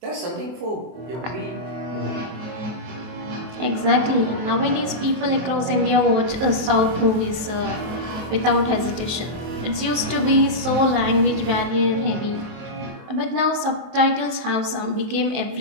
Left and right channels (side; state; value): left; late; 23 ms